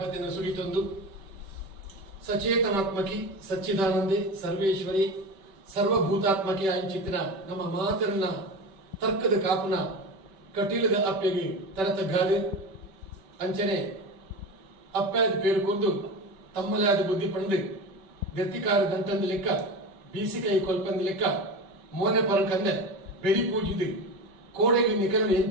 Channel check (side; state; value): left; late; 5.2 ms